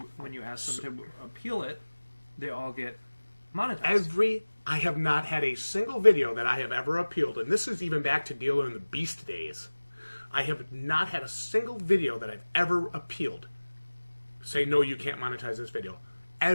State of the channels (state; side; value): inverted; both; correlation -1.00